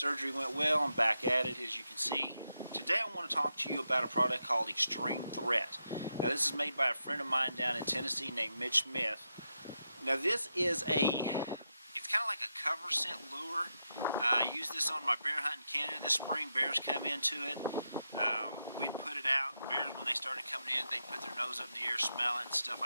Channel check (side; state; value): both; inverted; correlation -0.85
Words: went well. I'm back at it, as you can see. Today I want to talk to you about a product called X-treme Threat. Now this is made by a friend of mine down in Tennessee named Mitch Smith. Now this is it's kind of like a cover scent lure. I used this on my bear hunt in Canada this spring. Bears come into it. We'd put it out. Bears, when they started coming in, they'd put their nose up in the air, smell it, and stuff